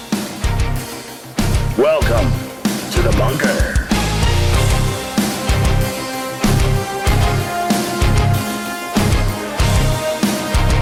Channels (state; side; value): identical; both; correlation 1.00